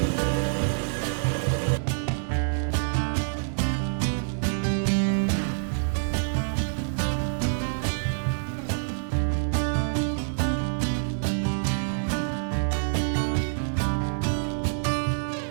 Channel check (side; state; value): left; silent; digital silence